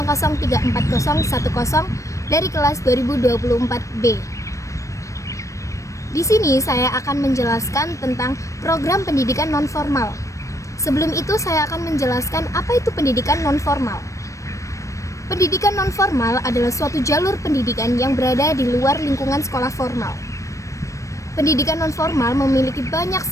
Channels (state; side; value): late; right; 0.15 ms